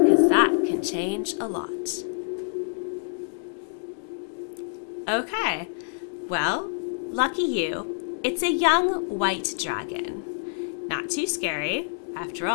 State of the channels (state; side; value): silent; right; digital silence